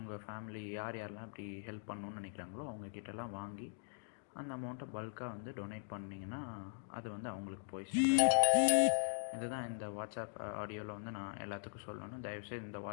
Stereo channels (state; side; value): silent; right; digital silence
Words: ஃபேமிலி யாரெல்லாம் இப்படி ஹெல்ப் பண்ணணுன்னு நினைக்கிறாங்களோ அவங்கக்கிட்டலாம் வாங்கி அந்த அமௌண்ட்டை பல்காக வந்து டொனேட் பண்ணிங்கன்னா அது வந்து அவங்களுக்கு போய் இதுதான் இந்த வாட்ஸ்அப் ஆடியோவில் வந்து நான் எல்லாத்துக்கும் சொல்லணும். தயவுசெய்து இந்த